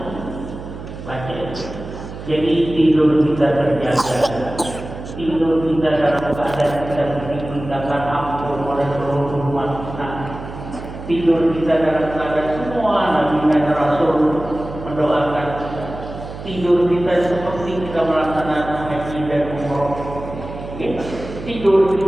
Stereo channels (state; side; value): noise; right; hum, 11 dB below the sound